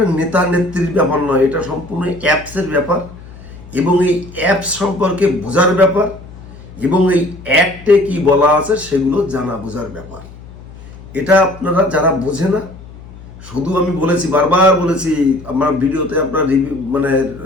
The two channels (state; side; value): noise; left; hum, 18 dB below the sound